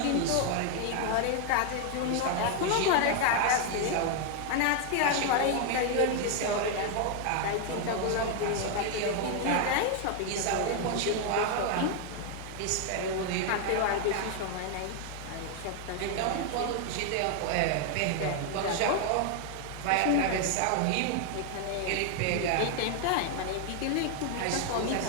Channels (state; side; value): different; both; correlation 0.00